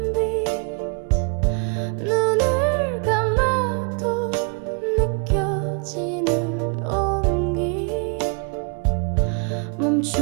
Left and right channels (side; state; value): left; quieter; 36.2 dB